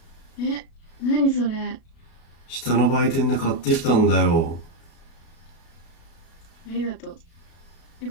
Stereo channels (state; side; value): late; right; 37 ms